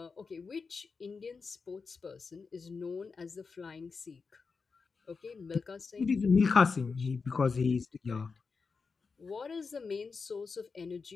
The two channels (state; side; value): quieter; right; 4.8 dB